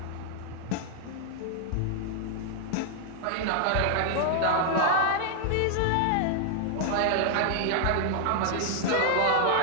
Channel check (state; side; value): different; both; correlation -0.01